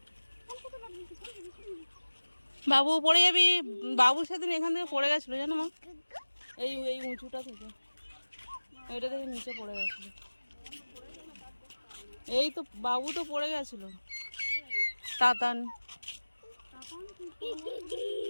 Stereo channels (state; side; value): inverted; both; correlation -1.00